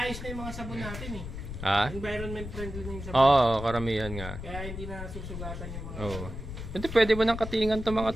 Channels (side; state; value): left; noise; rumble, 8 dB below the sound